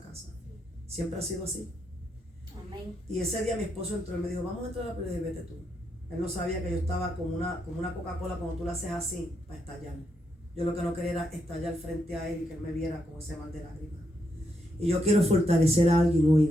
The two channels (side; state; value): both; normal; correlation 0.80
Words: casa. Siempre ha sido así. Amén. Y ese día mi esposo entró y me dijo, vamos a entrar a la pelea, y vete tú. Él no sabía que yo estaba como una Coca-Cola cuando tú la haces así para estallar. Yo lo que no quería era estallar frente a él y que él me viera con ese mal de lágrimas. Y yo quiero fortalecer a alguien hoy